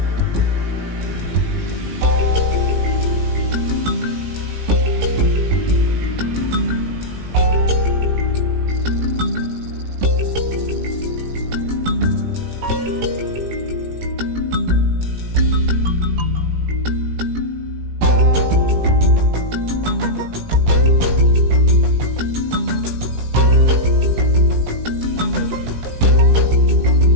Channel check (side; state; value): left; late; 18 ms